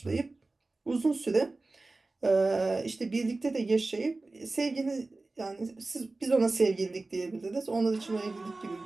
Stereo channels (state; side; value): quieter; left; 3.3 dB